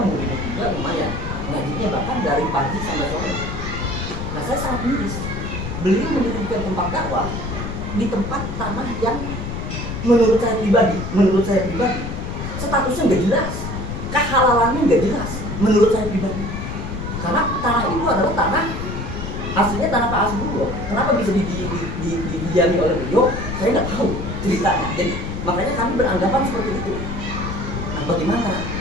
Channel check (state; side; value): noise; left; rumble, 5 dB below the sound